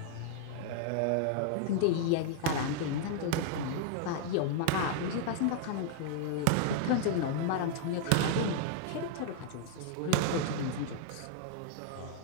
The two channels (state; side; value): different; both; correlation 0.00